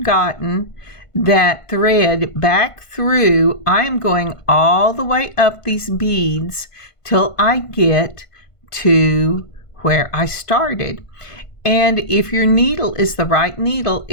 gotten that thread back through, I am going all the way up these beads till I get to where I started. And if your needle is the right needle,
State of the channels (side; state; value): right; late; 1.5 ms